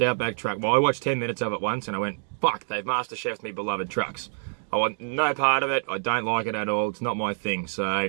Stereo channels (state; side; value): silent; left; digital silence